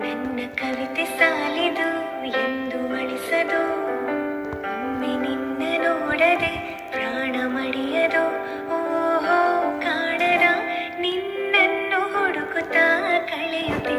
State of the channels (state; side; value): identical; both; correlation 1.00